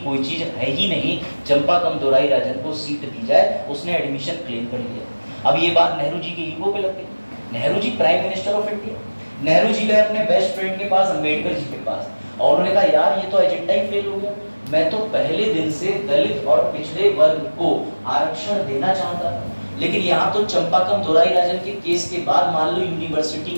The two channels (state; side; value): inverted; both; correlation -1.00